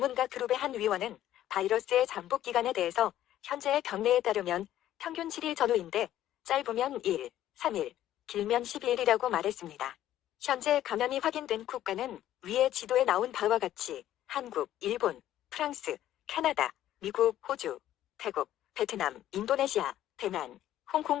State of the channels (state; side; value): quieter; right; 12.6 dB